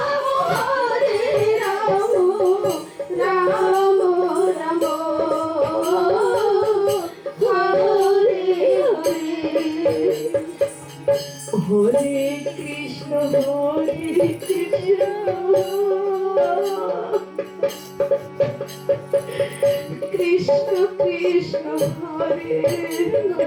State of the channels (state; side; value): identical; both; correlation 1.00